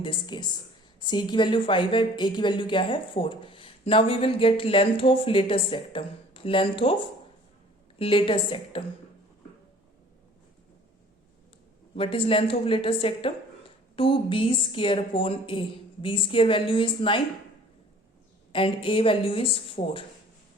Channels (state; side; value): normal; both; correlation 0.51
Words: this case. c की value 5 है, a की value क्या है? 4. Now we will get length of latus rectum. Length of latus rectum. What is length of latus rectum? 2b square upon a. b square value is 9 and a value is 4.